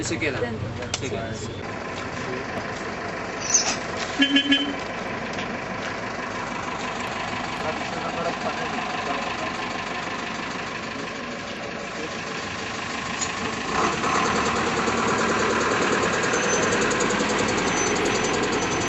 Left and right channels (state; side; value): identical; both; correlation 1.00